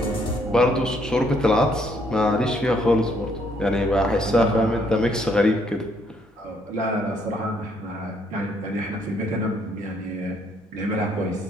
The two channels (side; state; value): both; normal; correlation 0.69